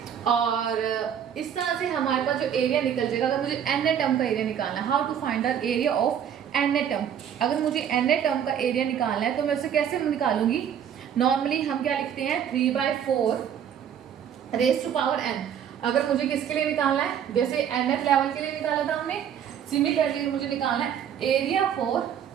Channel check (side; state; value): left; quieter; 8.9 dB